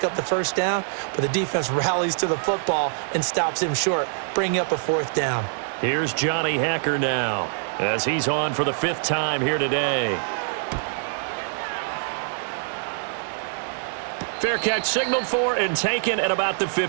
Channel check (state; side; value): silent; left; 62 dB below the other